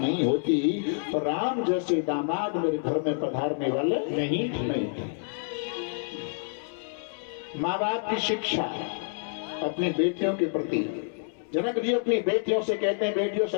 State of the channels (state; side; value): silent; right; 59 dB below the other